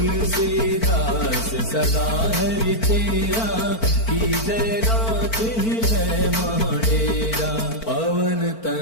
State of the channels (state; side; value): late; right; 4.5 ms